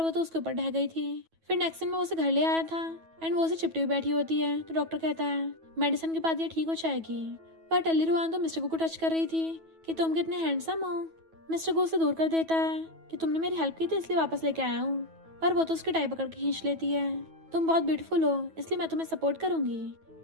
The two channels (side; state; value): left; late; 9.2 ms